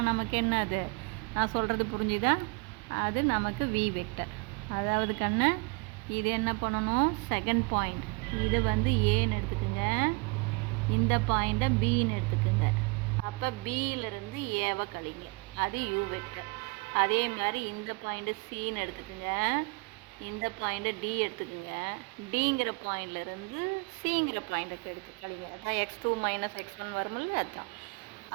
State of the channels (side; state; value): left; quieter; 29.3 dB